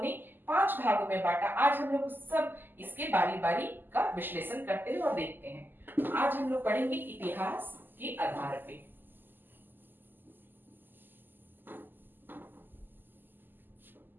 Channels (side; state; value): left; late; 0.092 ms